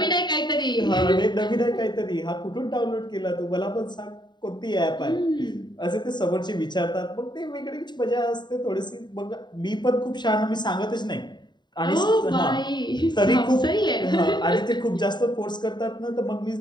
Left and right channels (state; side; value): late; right; 0.21 ms